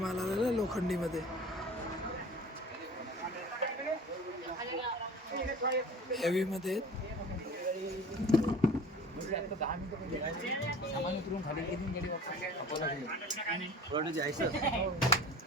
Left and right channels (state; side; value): normal; both; correlation 0.41